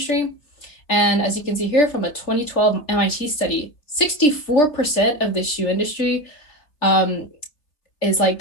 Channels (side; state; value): right; late; 3.3 ms